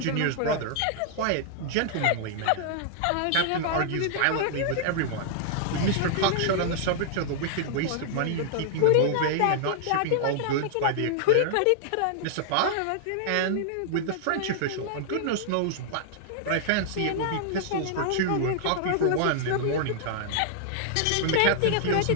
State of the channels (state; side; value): different; both; correlation -0.01